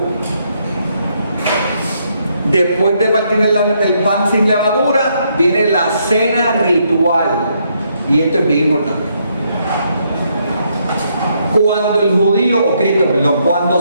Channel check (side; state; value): both; inverted; correlation -0.74